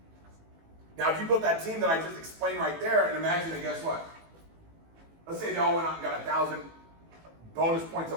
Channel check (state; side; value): late; left; 18 ms